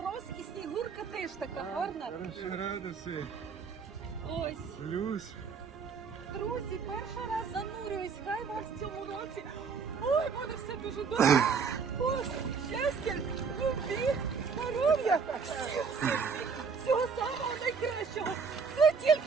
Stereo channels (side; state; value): left; quieter; 5.5 dB